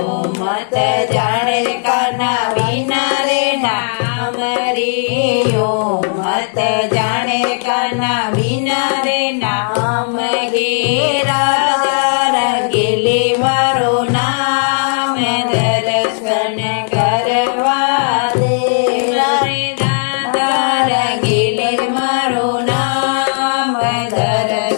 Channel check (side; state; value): right; silent; digital silence